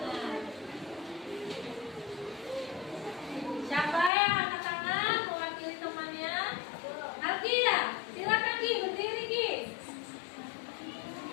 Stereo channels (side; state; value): right; drops out; at 4.1 s